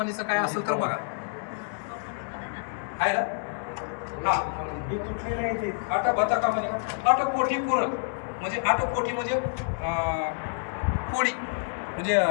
काय असेल तर बघा आहे ना अट भत कमानिका. अट कोठी पुर म्हणजे 8 कोठी म्हणजे पोळी म्हणजे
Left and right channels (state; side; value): silent; right; digital silence